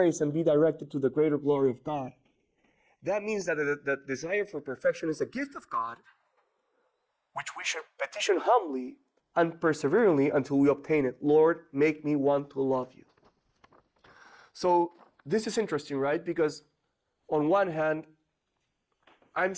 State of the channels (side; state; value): both; identical; correlation 1.00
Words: and be directed to the greater glory of God. That means that the desire for perfection is a gift of God, which we should petition humbly and perseveringly until we obtain it. Lord, make me want to love you. So this is interesting, right? Because on one hand, I'm